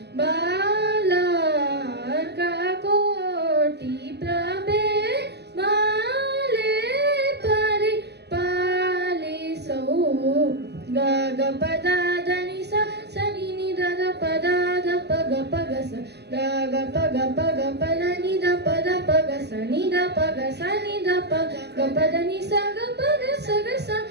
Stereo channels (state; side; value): late; left; 0.49 ms